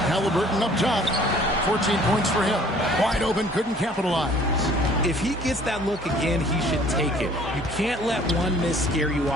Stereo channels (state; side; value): normal; both; correlation 0.54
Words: Halliburton up top. 14 points for him. Wide open, couldn't capitalize. If he gets that look again, he should take it. You can't let one miss scare you